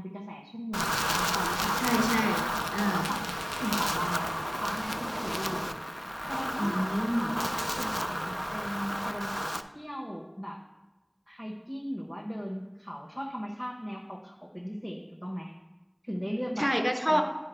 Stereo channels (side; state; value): both; identical; correlation 1.00